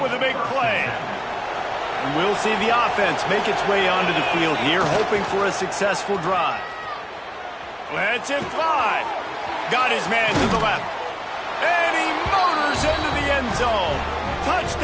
with a big play. And we'll see the offense make its way onto the field here, hoping for a successful drive. Lets it fly. Got his man to the left. And he motors into the end zone.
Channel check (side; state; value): both; identical; correlation 1.00